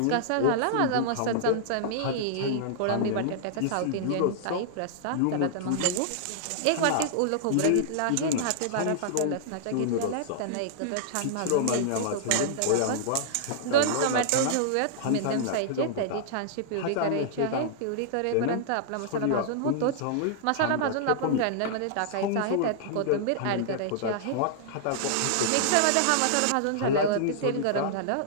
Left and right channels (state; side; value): different; both; correlation -0.01